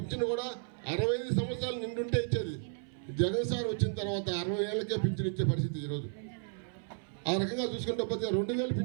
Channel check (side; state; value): left; silent; 55 dB below the other